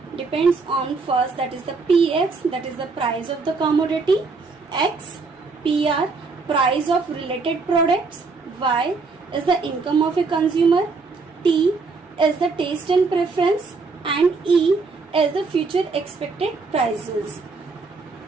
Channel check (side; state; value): left; quieter; 4.3 dB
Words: depends on first, that is the px, that is the price of the commodity, x, pr, price of related products, y is the income of a consumer, T is the taste and preference, and E is the future expected prices.